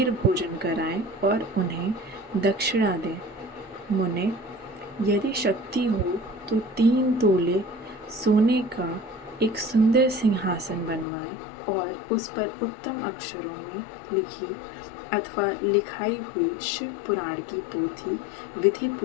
भोजन कराएं और उन्हें दक्षिणा दें। मुने, यदि शक्ति हो तो 3 तोले सोने का एक सुंदर सिंहासन बनवाएं और उस पर उत्तम अक्षरों में लिखी अथवा लिखाई हुई शिव पुराण की पोथी विधि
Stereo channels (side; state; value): right; drops out; at 11.1 s